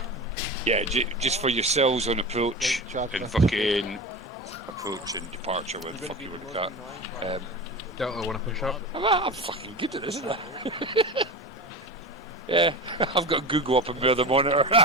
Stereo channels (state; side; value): normal; both; correlation 0.28